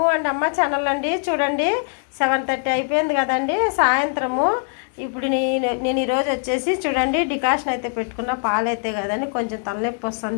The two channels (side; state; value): right; silent; 64 dB below the other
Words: and అమ్మ channel అండి. చూడండి 7:30 అయిపోయింది కదండి సాయంత్రము. ఇప్పుడు నేను ఈరోజు వచ్చేసి చూడండి డికాషన్ అయితే పెట్టుకున్న. పాలు అయితే కదండి కొంచెం తలనొప్పి